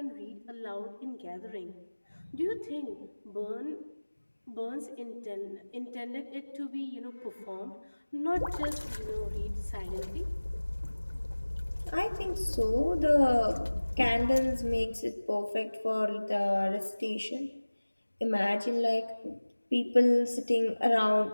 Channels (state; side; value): inverted; both; correlation -1.00